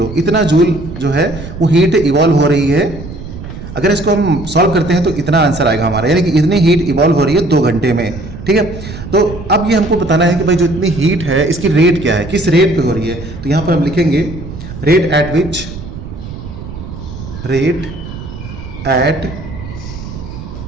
इतना जूल जो है वो हीट इवॉल्व हो रही है। अगर इसको हम सॉल्व करते हैं तो इतना आंसर आएगा हमारा, यानी कि इतनी हीट इवॉल्व हो रही है 2 घंटे में। ठीक है, तो अब ये हमको बताना है कि भाई जो इतनी हीट है इसकी रेट क्या है, किस रेट पे हो रही है। तो यहाँ पर हम लिखेंगे rate at which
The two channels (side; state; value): right; noise; rumble, 11 dB below the sound